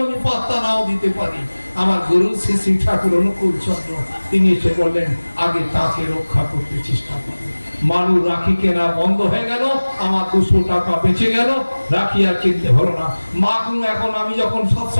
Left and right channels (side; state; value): both; inverted; correlation -1.00